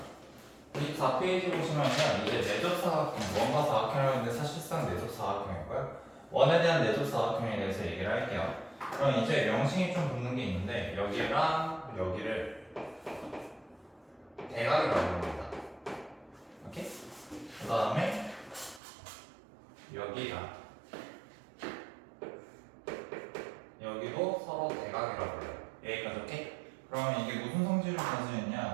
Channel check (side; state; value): left; drops out; at 18.8 s